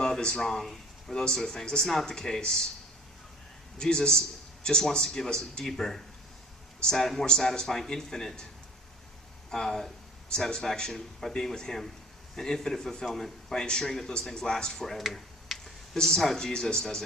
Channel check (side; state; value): both; normal; correlation 0.47